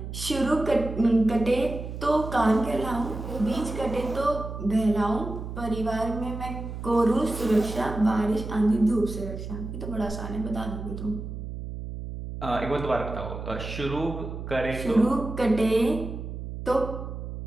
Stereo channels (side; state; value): right; noise; hum, 8 dB below the sound